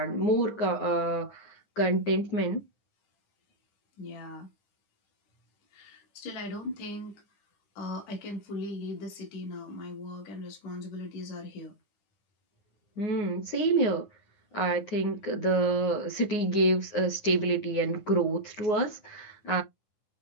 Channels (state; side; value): late; right; 9.6 ms